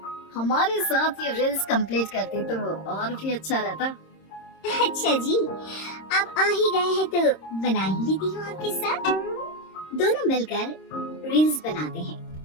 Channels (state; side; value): late; right; 26 ms